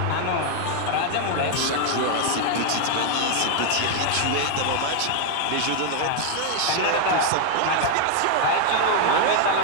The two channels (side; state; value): both; different; correlation 0.00